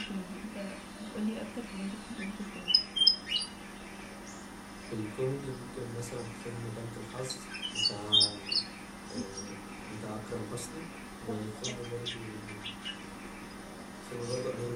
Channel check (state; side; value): identical; both; correlation 1.00